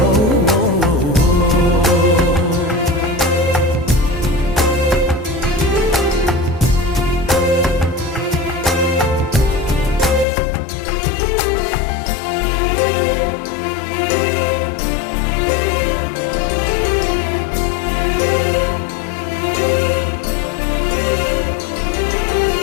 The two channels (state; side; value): drops out; right; at 10.2 s